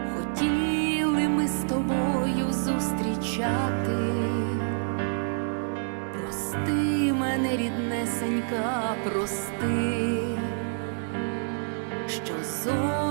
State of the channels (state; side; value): silent; left; digital silence